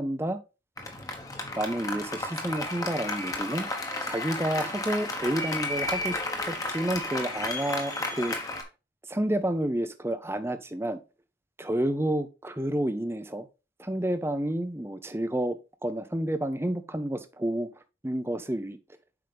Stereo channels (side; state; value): both; normal; correlation 0.70